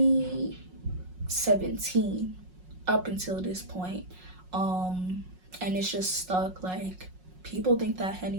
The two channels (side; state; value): left; late; 5.5 ms